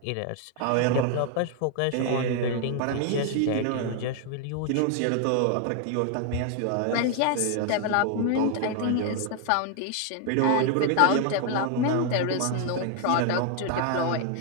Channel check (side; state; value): both; different; correlation 0.00